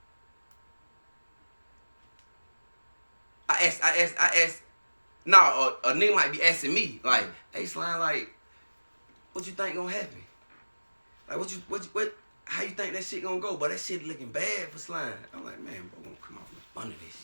I asked. No, a nigga might be asking me, like, hey, slime, like, what you think gonna happen? Like, what? How you think that shit gonna go? But that shit looking bad for slime. I'm like, man, bro, gonna come off up under that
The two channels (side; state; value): both; inverted; correlation -1.00